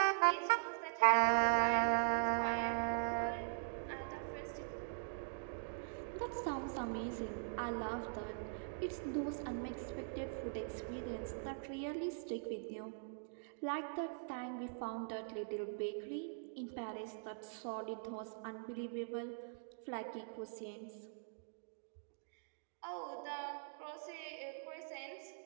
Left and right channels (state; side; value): silent; left; digital silence